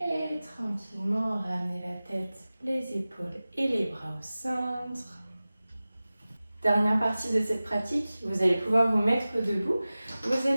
tranquillement, ramenez la tête, les épaules et les bras au centre. Dernière partie de cette pratique, vous allez pouvoir vous mettre debout. Vous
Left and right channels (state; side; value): inverted; both; correlation -0.97